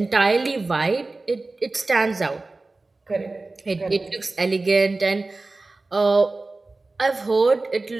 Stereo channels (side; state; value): left; quieter; 3.3 dB